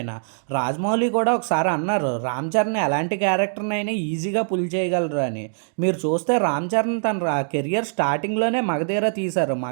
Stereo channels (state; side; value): silent; left; digital silence